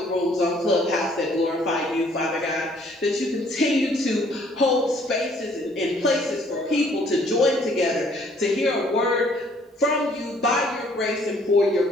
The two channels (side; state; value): both; normal; correlation 0.61